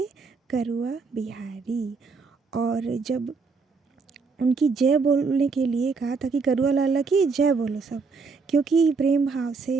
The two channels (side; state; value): left; quieter; 4.7 dB